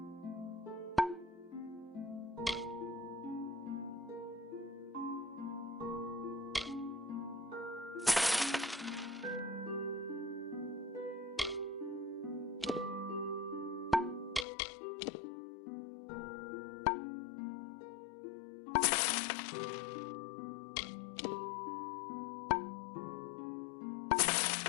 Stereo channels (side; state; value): right; drops out; at 14.5 s